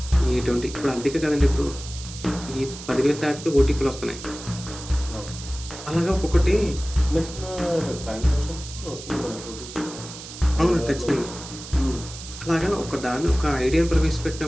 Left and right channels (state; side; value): noise; right; hiss, 13 dB below the sound